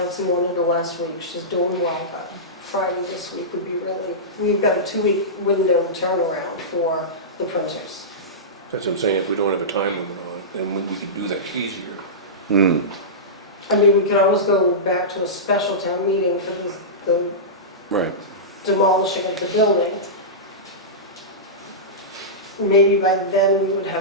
wanted her last week. She's doing well, but Friday this week would be really, we've got a 2-week window turnaround for the printers. That's what I'm saying, if we don't have a time limit on it, then we could do that easier. I mean, we could always go back to a special town meeting for the Right. demolishing of the building. Maybe by then we would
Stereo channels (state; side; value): normal; both; correlation -0.16